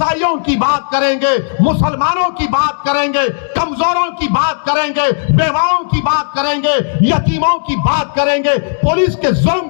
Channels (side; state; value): right; silent; digital silence